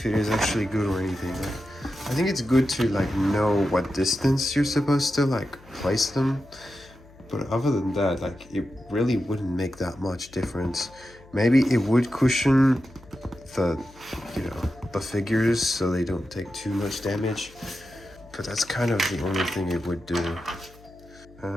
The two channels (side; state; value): left; noise; hum, 24 dB below the sound